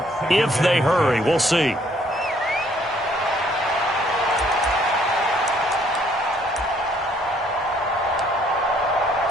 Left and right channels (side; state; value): both; normal; correlation 0.64